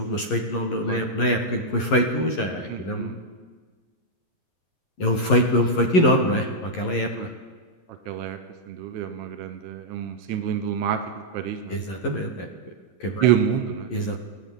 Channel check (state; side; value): late; right; 11 ms